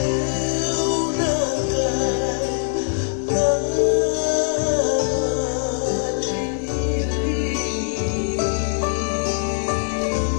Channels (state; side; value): silent; right; digital silence